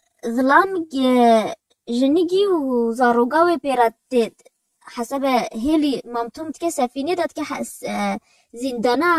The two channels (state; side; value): identical; both; correlation 1.00